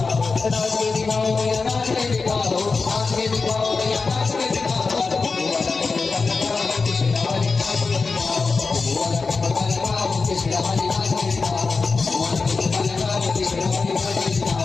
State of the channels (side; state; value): right; quieter; 4.3 dB